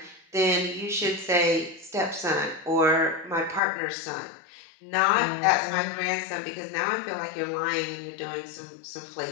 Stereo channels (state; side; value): drops out; right; at 3.6 s